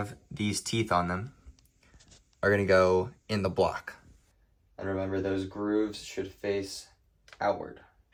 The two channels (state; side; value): identical; both; correlation 1.00